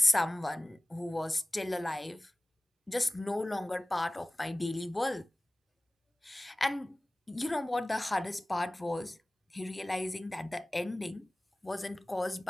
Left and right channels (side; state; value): both; normal; correlation 0.98